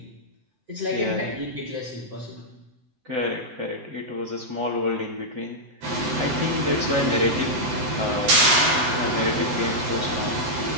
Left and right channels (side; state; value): left; late; 7.9 ms